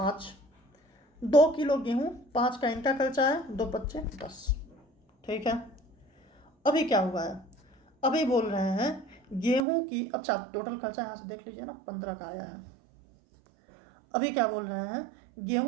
2 किलो गेहूँ, 5 का इनका खर्चा है, 2 पच्चे 10। ठीक है। अभी क्या हुआ है, अभी बोल रहे हैं गेहूं की, अच्छा टोटल खर्चा यहाँ से देख लीजिए ना, 15 का आया है। अभी क्या बोल रहे हैं,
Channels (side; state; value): left; drops out; at 9.6 s